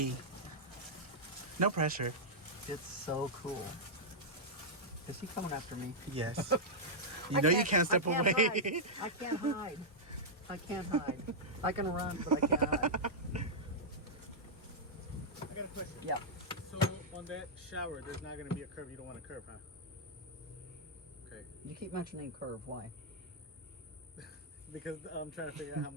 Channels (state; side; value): normal; both; correlation -0.08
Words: No pressure. It's so cool. Is he coming after me? Yes. You know you can't step away. I can't hide. I can run, but I can't hide. I got a question. Yeah. So on that shower, there's not going to be a curve. You don't want a curve, huh? Okay. You keep mentioning curve. Why? Because I'm trying to figure out how I'm